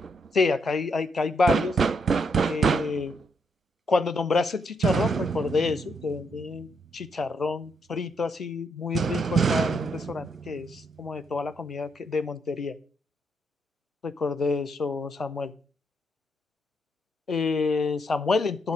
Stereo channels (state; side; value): normal; both; correlation 0.76